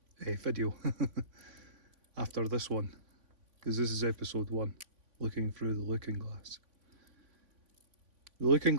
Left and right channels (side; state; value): left; late; 3.5 ms